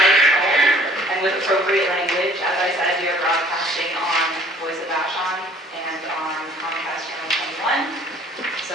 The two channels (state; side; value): normal; both; correlation 0.55